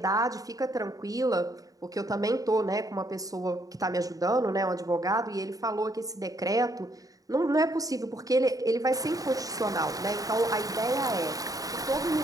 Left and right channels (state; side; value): late; left; 0.17 ms